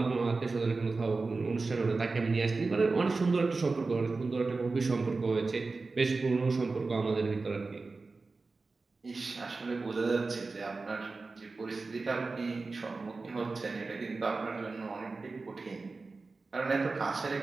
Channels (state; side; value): quieter; left; 3.8 dB